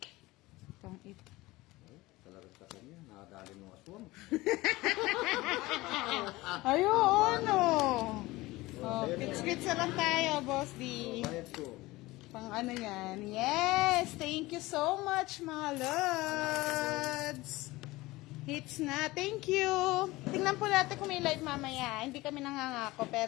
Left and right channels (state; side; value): quieter; right; 19.9 dB